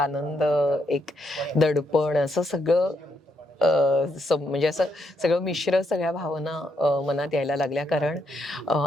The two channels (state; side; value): normal; both; correlation 0.77